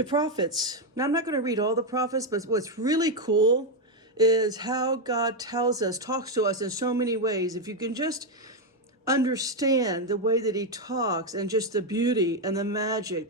prophets. Now, I'm not going to read all the prophets, but what's really cool is how God talks to us in so many ways. If you can just understand the way that he talks and just the beauty and the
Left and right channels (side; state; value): both; normal; correlation 0.03